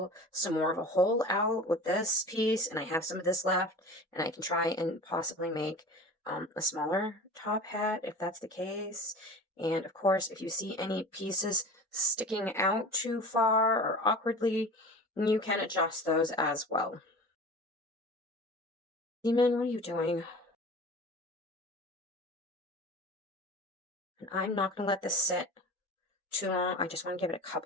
some more of a hole out with this piece, and I have some of this left, and I can try and possibly make a smaller top hat if that's the case. And of course, if you see any pieces sticking out too far or awkwardly, you can adjust those as well. Demon, what are you doing? And I'm not going to let this sit too long. I just want to give it a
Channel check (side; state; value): both; normal; correlation 0.37